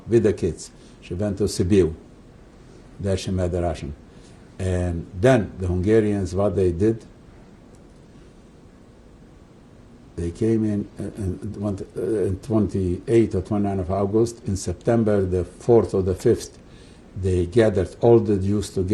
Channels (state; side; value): identical; both; correlation 1.00